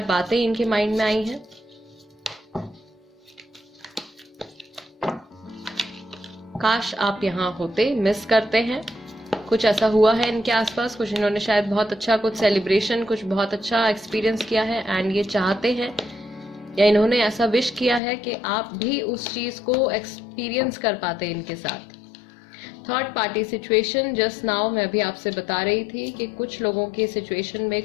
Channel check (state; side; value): drops out; right; at 18.0 s